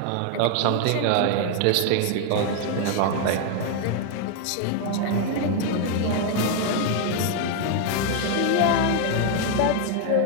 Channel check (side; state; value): both; different; correlation 0.00